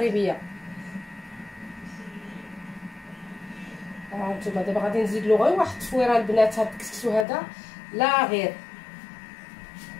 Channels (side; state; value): right; drops out; at 7.2 s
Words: هانتوما دابا غادي نزيد له غير واحد التفويره البنات. هاد الكسكسو هذا لا غير.